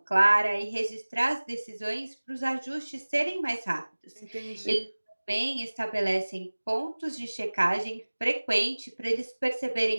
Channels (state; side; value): inverted; both; correlation -1.00